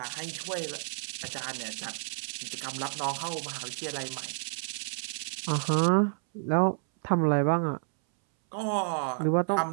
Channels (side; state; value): left; silent; 58 dB below the other